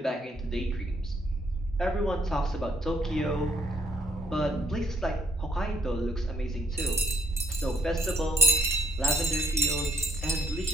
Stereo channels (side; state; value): both; normal; correlation 0.68